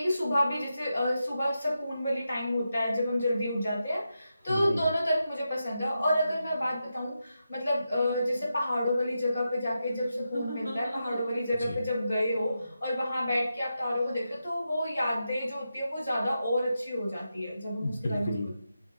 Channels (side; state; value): both; inverted; correlation -0.88